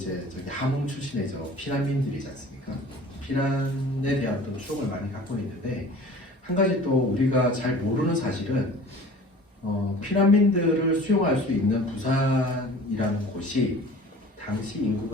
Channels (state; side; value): normal; both; correlation 0.44